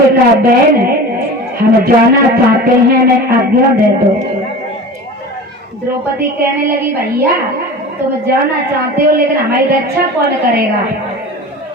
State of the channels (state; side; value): normal; both; correlation 0.35